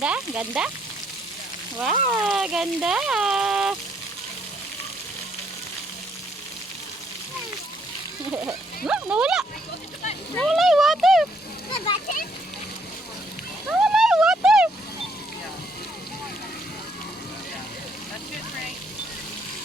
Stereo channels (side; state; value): both; normal; correlation 0.69